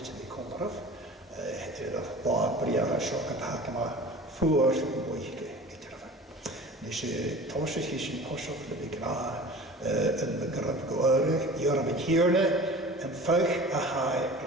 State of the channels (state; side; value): normal; both; correlation 0.40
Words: yn ei conoraf yr bád briar a sio gyda yma ffwr mwy gyda'r nes I tosys chi sy'n posioch le fi gra yn mygraf gwyrig I o'r yn hirne yn ffych a hai